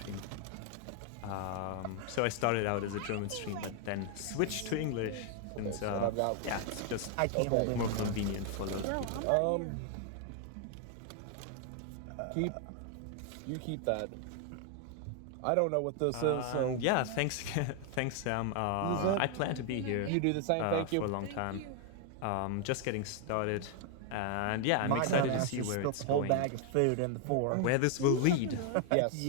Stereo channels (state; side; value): different; both; correlation 0.00